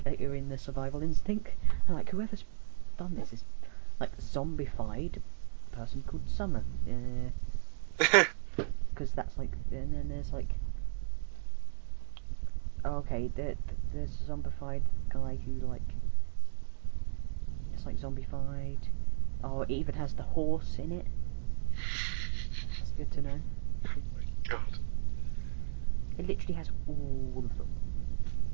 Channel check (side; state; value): left; silent; digital silence